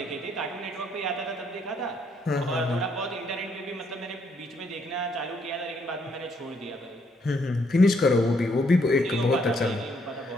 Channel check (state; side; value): normal; both; correlation 0.71